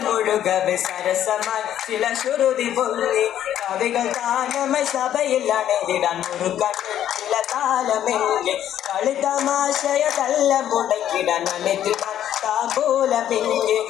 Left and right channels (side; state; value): right; quieter; 11.0 dB